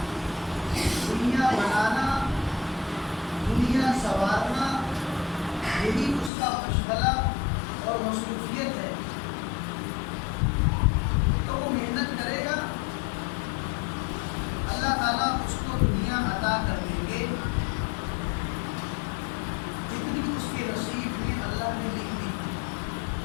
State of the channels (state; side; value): drops out; right; at 6.3 s